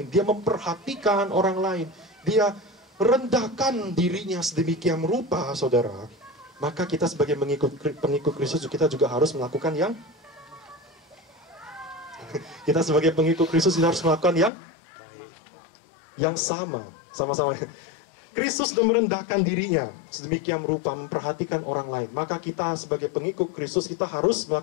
dia memperhatikan orang lain, dia rendahkan dirinya sedemikian rupa, saudara, maka kita sebagai pengikut Kristus, kita juga harus melakukan kita sebagai pengikut Kristus harus melakukan yang sama-sama. Kristus sudah merendahkan dirinya sedemikian rupa, memperhatikan orang lain, maka kita sebagai pengikut Kristus, kita harus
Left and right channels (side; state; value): right; drops out; at 14.5 s